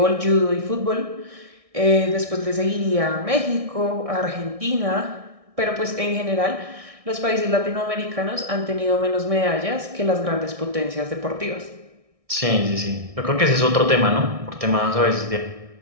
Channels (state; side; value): late; left; 1.6 ms